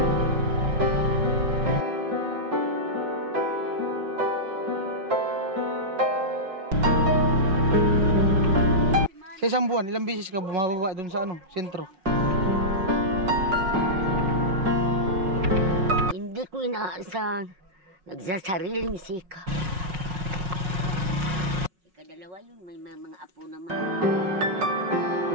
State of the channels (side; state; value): left; late; 5.4 ms